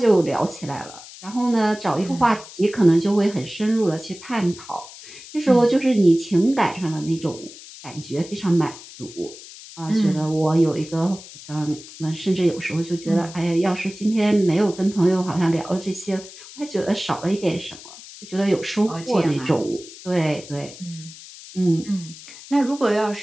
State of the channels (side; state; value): left; noise; hiss, 17 dB below the sound